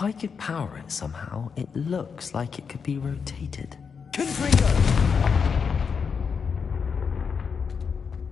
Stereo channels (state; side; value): quieter; right; 6.0 dB